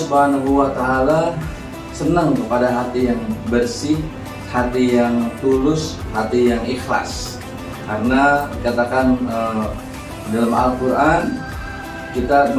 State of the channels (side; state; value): both; identical; correlation 1.00